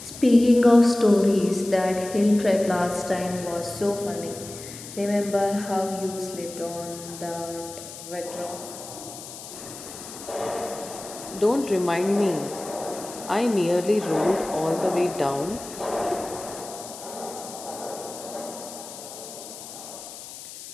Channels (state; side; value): noise; left; hiss, 13 dB below the sound